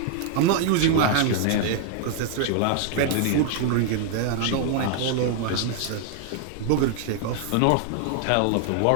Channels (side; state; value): both; different; correlation 0.00